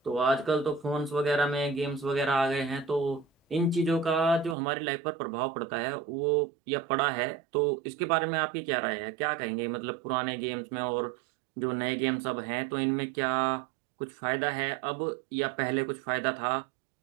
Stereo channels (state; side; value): drops out; left; at 4.5 s